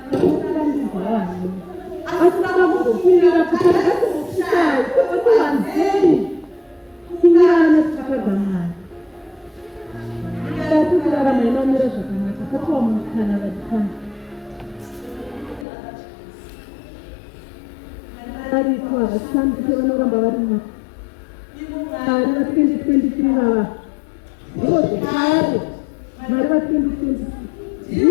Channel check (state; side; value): drops out; right; at 15.7 s